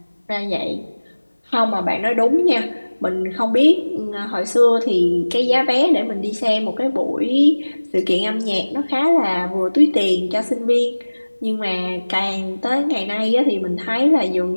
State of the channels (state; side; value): inverted; both; correlation -1.00